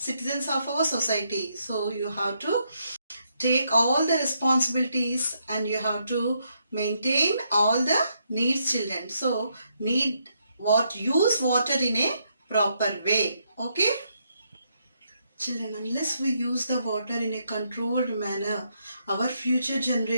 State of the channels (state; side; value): inverted; both; correlation -0.77